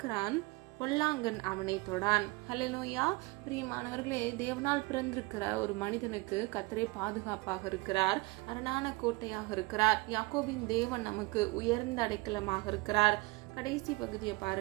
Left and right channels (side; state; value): left; quieter; 24.6 dB